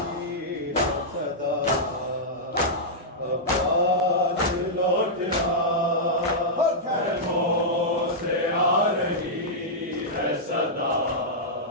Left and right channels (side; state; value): both; normal; correlation -0.09